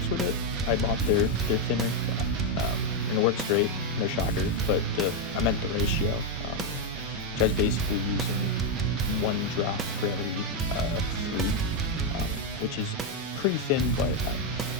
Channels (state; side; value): normal; both; correlation 0.03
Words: with it. I bought their thinner, and it works great, no shocker, but I meant the ratio, which I was basically using 1 drop for every 3, which is pretty thin, but